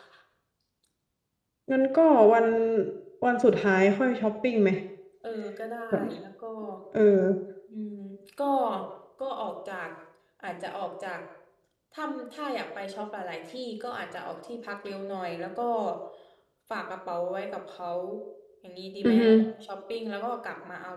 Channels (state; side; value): identical; both; correlation 1.00